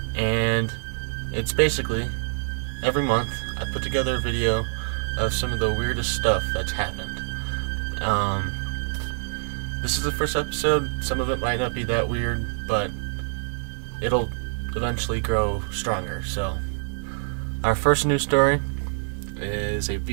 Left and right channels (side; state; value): left; silent; digital silence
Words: and it's basically every month I put together a video of some of the weirdest stuff that's happened. This is the first episode. Some of it might not be that weird, but it'll eventually grow stronger. So our first news story is a